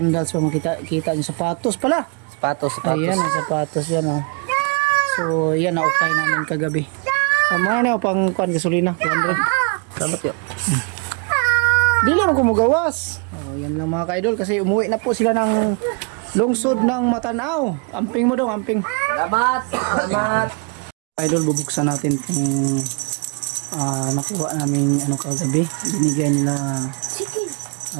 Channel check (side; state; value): left; quieter; 35.9 dB